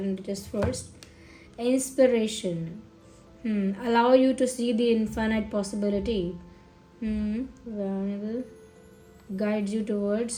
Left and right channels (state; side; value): identical; both; correlation 1.00